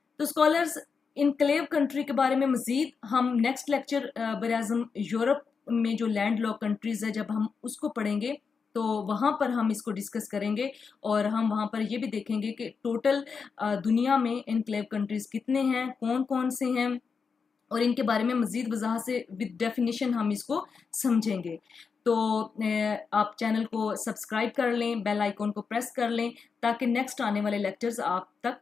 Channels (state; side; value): quieter; right; 5.5 dB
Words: तो स्कॉलर्स, इनक्लेव कंट्री के बारे में मजीद हम नेक्स्ट लेक्चर ब्राज़ील यूरोप में जो लैंड लॉक कंट्रीज है जब हम उसको पढ़ेंगे तो वहाँ पर हम इसको डिस्कस करेंगे और हम वहाँ पर ये भी देखेंगे कि टोटल दुनिया में इनक्लेव कंट्रीज कितने हैं, कौन कौन से हैं, और इनके बारे में मजीद वजाहत से विद डेफिनेशन हम इसको समझेंगे। तो आप चैनल को सब्सक्राइब कर लें, बेल आइकॉन को प्रेस कर लें ताकि नेक्स्ट आने वाले लेक्चर्स आप तक